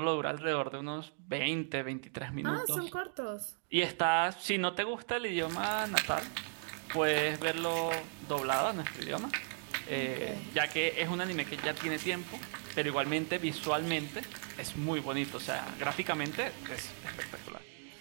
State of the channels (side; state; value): left; silent; 54 dB below the other